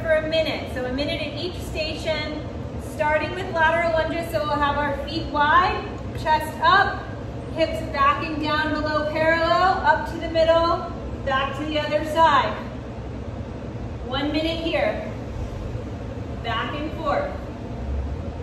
for a minute. So a minute at each station, starting with lateral lunges. So we'll have our feet wide, chest up, hips backing down below parallel, up to the middle, back to the other side. 1 minute here. Back and forth.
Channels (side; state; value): both; identical; correlation 1.00